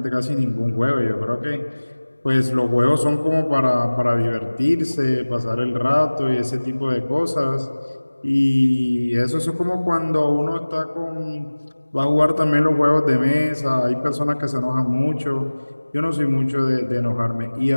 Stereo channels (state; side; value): inverted; both; correlation -1.00